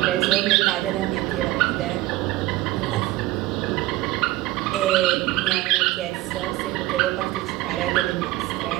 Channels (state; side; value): quieter; left; 17.7 dB